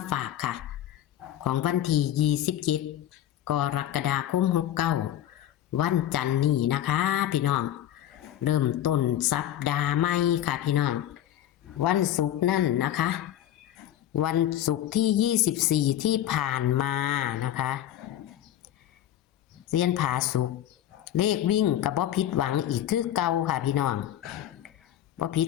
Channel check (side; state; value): right; quieter; 11.9 dB